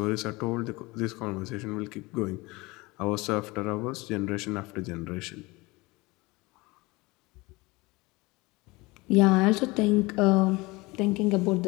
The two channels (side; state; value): right; quieter; 23.2 dB